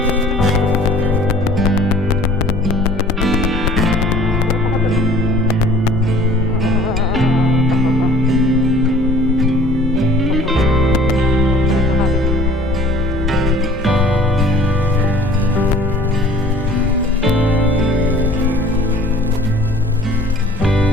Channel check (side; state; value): both; normal; correlation 0.51